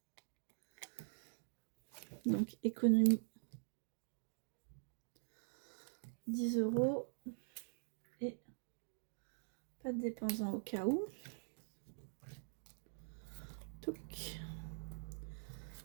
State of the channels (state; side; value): silent; left; digital silence